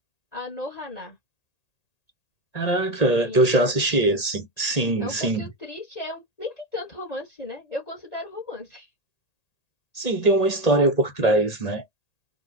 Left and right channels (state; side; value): late; right; 1.8 ms